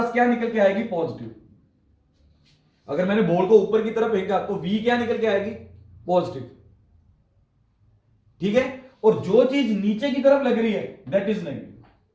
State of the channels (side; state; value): both; identical; correlation 1.00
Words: क्या निकल के आएगी, पॉजिटिव। अगर मैंने बॉल को ऊपर की तरफ फेंका तो वी क्या निकल के आएगी, पॉजिटिव, ठीक है। और जो चीज नीचे की तरफ लग रही है दैट इज नेगेटिव।